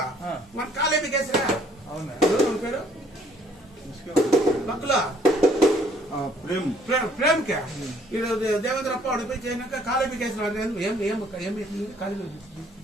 మన కాలేజీ కేసురా పేరు పక్కల ప్రేమ్ కే దేవేంద్ర అప్ప వాడు పోయి చేసినాక కాలేజీ కేసు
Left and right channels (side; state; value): both; normal; correlation 0.61